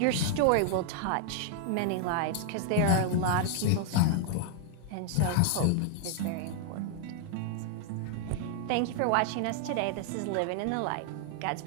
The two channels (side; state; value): both; different; correlation 0.00